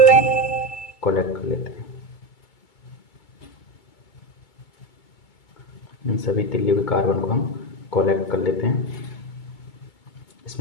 कलेक्ट कर लेते हैं। इन सभी तिल्लियों के कार्बन को हम कलेक्ट कर लेते हैं।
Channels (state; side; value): late; right; 2.2 ms